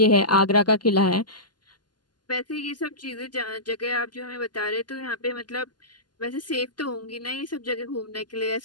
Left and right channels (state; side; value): late; right; 0.71 ms